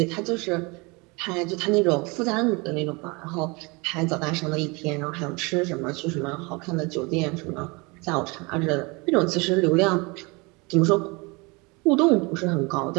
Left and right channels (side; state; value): left; quieter; 27.4 dB